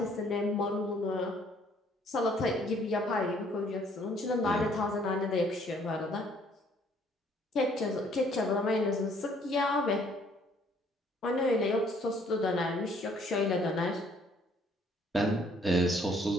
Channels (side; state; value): both; normal; correlation 0.62